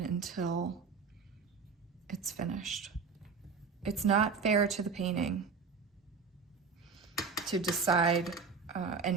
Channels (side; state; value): left; quieter; 5.2 dB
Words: until it's finished. It's not fair to the painting to decide